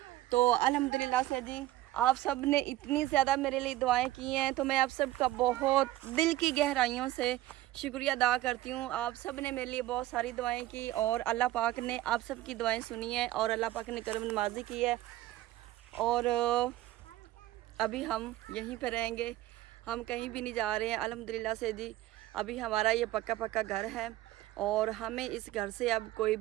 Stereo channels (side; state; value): left; quieter; 15.7 dB